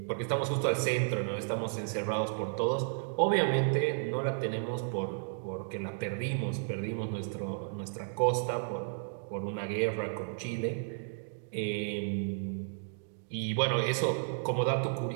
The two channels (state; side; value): silent; left; digital silence